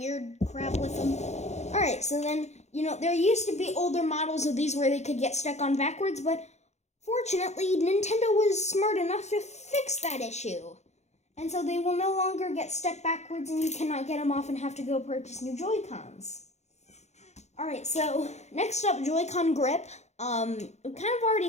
crap with them. Alright, so then, there used to be older models of these where they could get stuck on backwards, but fortunately, Nintendo was smart enough to fix that issue. And so they will no longer get stuck backwards and you cannot get them off and have to go purchase new Joy-Cons. Alright, so next up, Joy-Con grip. We kind of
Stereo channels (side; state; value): right; late; 0.33 ms